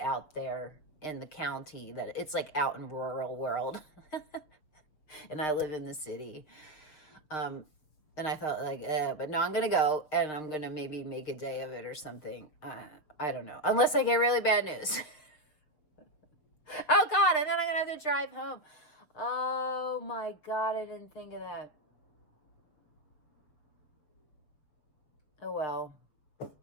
there in the county, that it's out in rural world. And I live in the city. And I thought but no, I'm going to go, and I'm going to maybe make a day of it or something. I don't know. Unless I get really bad news. Oh God. And then I'm going to have to drive home. Oh my God. I didn't think of that. Oh well.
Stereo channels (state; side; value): late; right; 6.3 ms